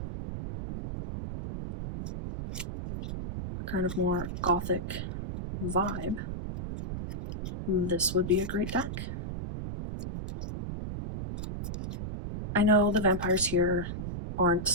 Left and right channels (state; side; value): noise; right; rumble, 5 dB below the sound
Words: a kind of more gothic vibe, this would be a great deck. I know the vampires here aren't